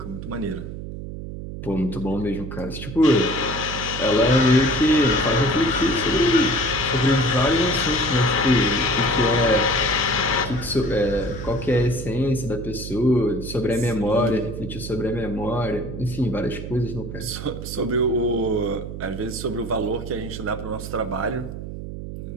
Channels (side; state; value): right; noise; hum, 9 dB below the sound